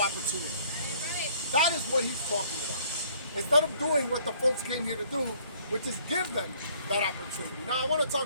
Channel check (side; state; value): both; inverted; correlation -0.60